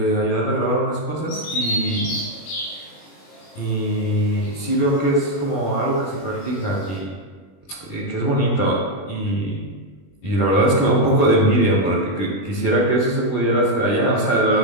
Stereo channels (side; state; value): right; late; 21 ms